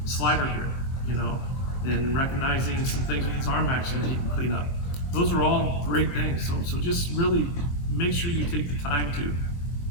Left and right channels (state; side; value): late; right; 23 ms